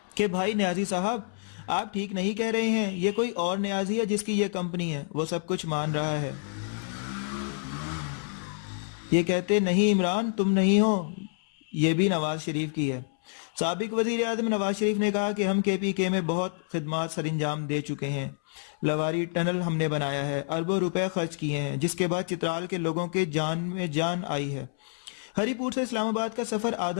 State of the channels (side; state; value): right; silent; 59 dB below the other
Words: کہ بھائی نیازی صاحب آپ ٹھیک نہیں کہہ رہے ہیں، یہ کوئی اور نیازی ہے جس کی یہ کمپنی ہے، وہ سب کچھ مان رہا ہے۔ یہ کہتے نہیں عمران تم نہیں ہو، یہ بھی نواز شریف کی ہے۔ سابق وزیر اعظم نواز شریف نے کہا کہ ہم KPK میں بہت خدمات سر انجام دے چکے ہیں، لواری ٹنل ہم نے بنایا ہے، اربوں روپے خرچ کیے ہیں، جس کے بعد چترال کے لوگوں کے جان میں جان آئی ہے۔ ہری پور سے اسلام آباد کا سفر